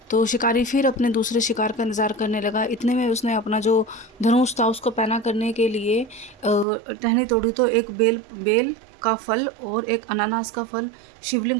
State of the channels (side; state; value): left; drops out; at 6.7 s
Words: तो शिकारी फिर अपने दूसरे शिकार का इंतज़ार करने लगा। इतने में उसने अपना जो धनुष था उसको पैना करने के लिए टहनी तोड़ी तो एक बेल का फल और एक अनानास का फल